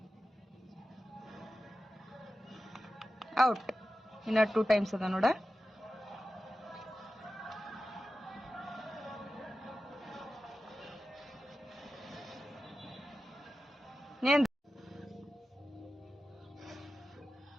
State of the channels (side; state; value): both; normal; correlation 0.93